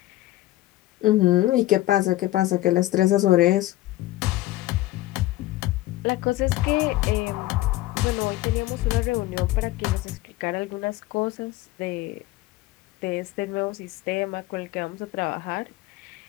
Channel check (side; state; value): right; quieter; 16.6 dB